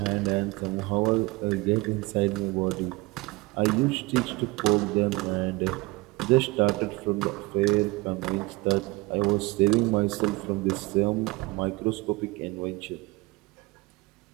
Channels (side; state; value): left; quieter; 23.1 dB